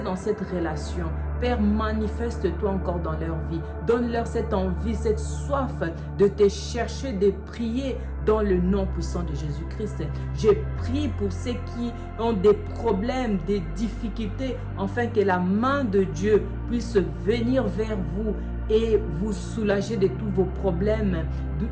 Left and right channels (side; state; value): both; identical; correlation 1.00